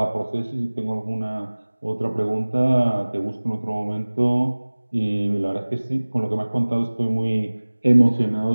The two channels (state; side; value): inverted; both; correlation -1.00